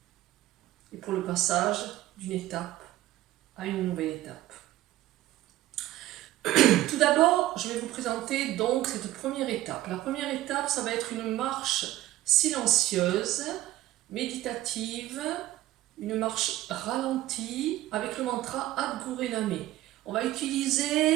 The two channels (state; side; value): quieter; left; 15.2 dB